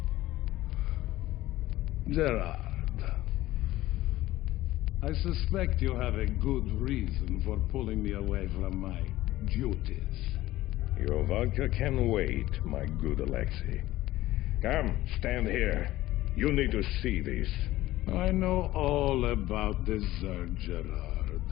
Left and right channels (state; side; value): quieter; right; 16.1 dB